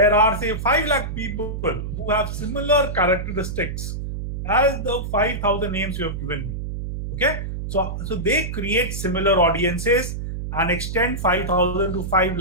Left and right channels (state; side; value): noise; right; hum, 5 dB below the sound